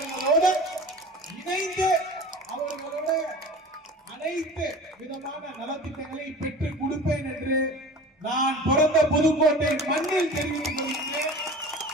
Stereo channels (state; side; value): normal; both; correlation 0.38